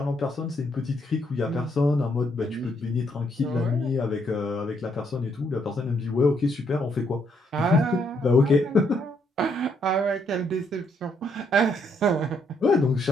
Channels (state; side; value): normal; both; correlation 0.73